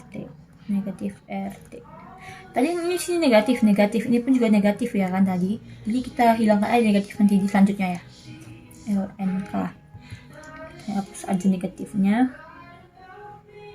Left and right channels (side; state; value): both; identical; correlation 1.00